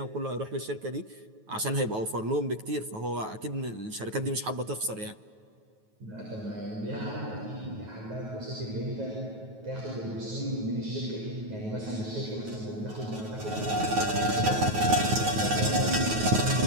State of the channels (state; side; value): late; left; 9.3 ms